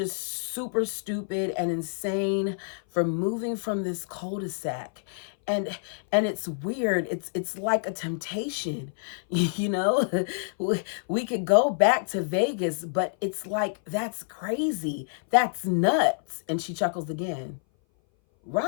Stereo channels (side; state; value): right; silent; 58 dB below the other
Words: super stupid and insane for moving from this cul-de-sac. And it's weird. It's like a temptation, we could go back to Vegas, but it's like, that's crazy. That's nuts. And she chuckles again.